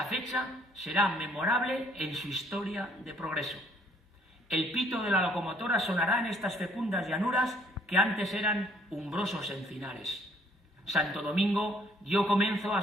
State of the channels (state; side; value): normal; both; correlation 0.63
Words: fecha será memorable en su historia de progreso. El pito de la locomotora sonará en estas fecundas llanuras que antes eran umbrosos encinares. Santo Domingo dio comienzo a